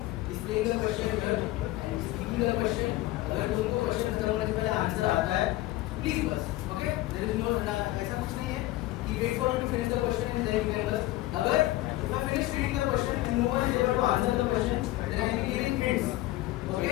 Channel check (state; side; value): quieter; right; 17.2 dB